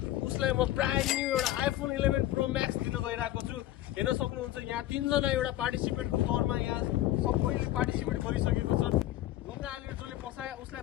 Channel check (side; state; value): right; quieter; 14.5 dB